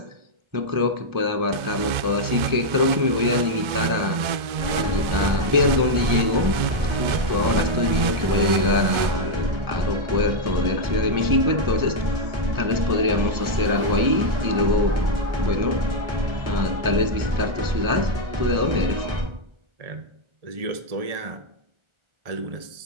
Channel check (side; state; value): left; late; 1.4 ms